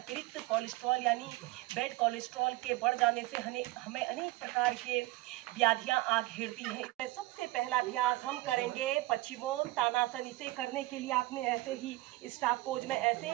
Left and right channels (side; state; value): left; quieter; 19.0 dB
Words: कोलेस्ट्रॉल यानी बैड कोलेस्ट्रॉल के बढ़ जाने से हमें अनेक प्रकार के व्याधियां आ घेरती हैं। सबसे पहला अभ्यास हम करेंगे पश्चिमोत्तानासन। इसे करने के लिए आपने ऐसे ही स्टाफ पोज में